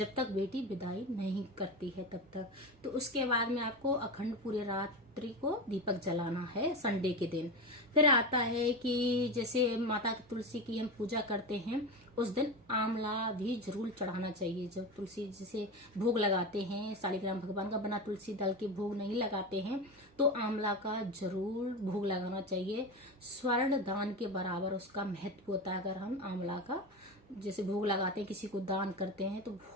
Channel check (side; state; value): both; normal; correlation 0.21